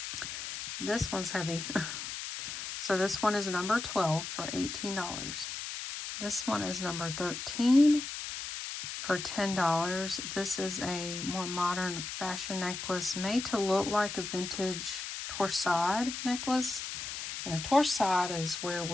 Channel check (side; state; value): left; noise; hiss, 6 dB below the sound